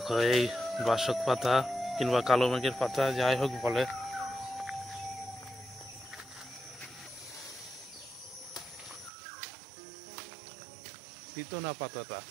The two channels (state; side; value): drops out; left; at 9.1 s